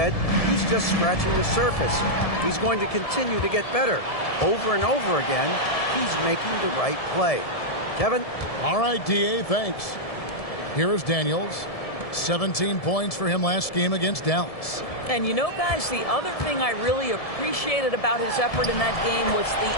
he's just scratching the surface. He's going to continue to get better. Over and over again, he's making the right play. Kevin? All right, D.A., thanks. Here is Daniels. 17 points for him last game against Dallas. And you know, guys, the other thing I really appreciated about his effort in that game was the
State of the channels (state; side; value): late; right; 1.7 ms